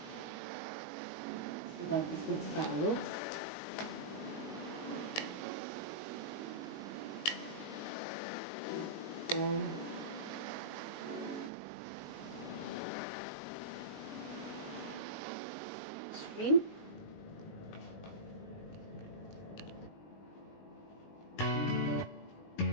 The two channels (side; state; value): right; late; 20 ms